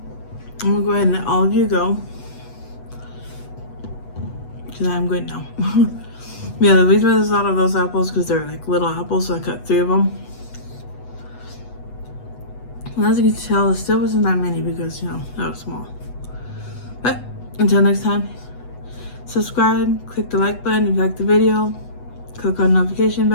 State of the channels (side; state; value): right; late; 8.1 ms